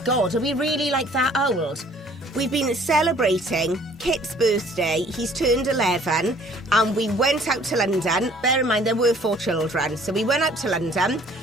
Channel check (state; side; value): normal; both; correlation 0.56